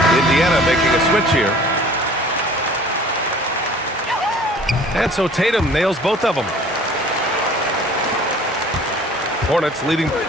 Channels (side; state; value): both; normal; correlation 0.49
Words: Indiana making a switch here. And so Tatum nails both of them. Hornets leading